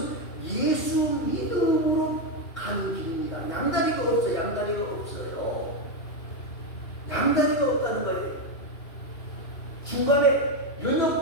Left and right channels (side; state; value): right; late; 2.7 ms